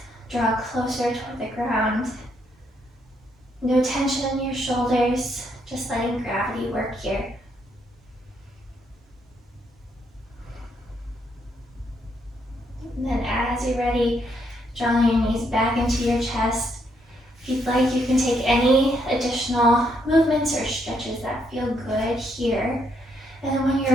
draw closer toward the ground. No tension in your shoulders, just letting gravity work here. And then as you're ready, drawing your knees back into your chest. If you'd like, you can take any additional movements or stretches that feel good here. And then when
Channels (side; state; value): both; normal; correlation 0.74